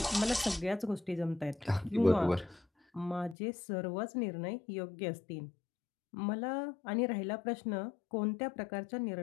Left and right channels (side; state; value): right; drops out; at 3.4 s